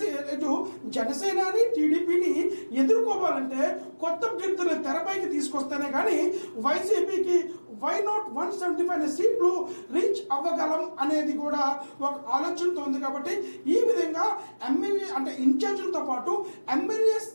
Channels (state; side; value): inverted; both; correlation -1.00